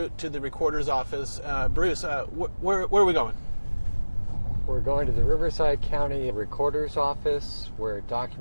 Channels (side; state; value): both; inverted; correlation -1.00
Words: to the recorder's office. Bruce, where are we going? We're going to the Riverside County Recorder's Office where